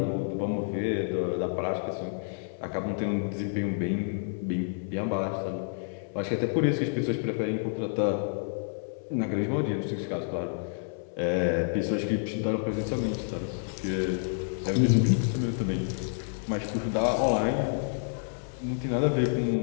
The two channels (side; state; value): right; silent; 58 dB below the other